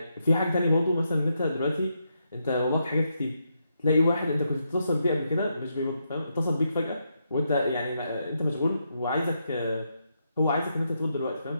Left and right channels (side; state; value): both; inverted; correlation -0.81